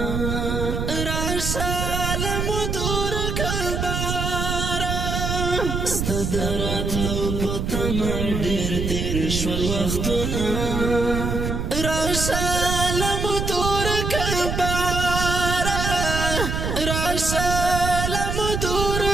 راشه لمو تور کلباره ستا د راتلو په تمه ډېر تېر شول وختونه راشه لمو تور کلباره راشه لمو تور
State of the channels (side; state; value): right; noise; rumble, 2 dB below the sound